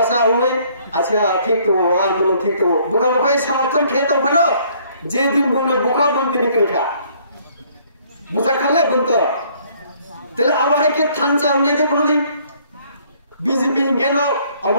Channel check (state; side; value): inverted; both; correlation -0.62